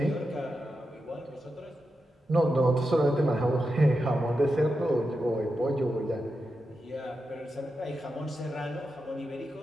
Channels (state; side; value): normal; both; correlation 0.89